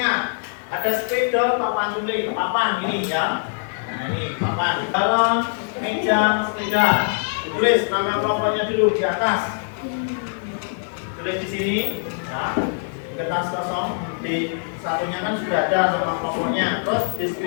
ada sepeda, papan tulis, papan ini ya, nah ini papan, balon, meja, sepeda, ditulis nama kelompoknya dulu di atas, tulis di sini, ya, di kertas kosong, di satunya kan sudah ada nama kelompoknya, terus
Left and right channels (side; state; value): right; silent; digital silence